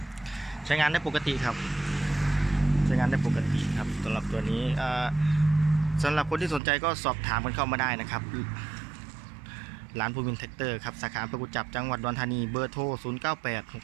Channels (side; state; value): left; drops out; at 6.6 s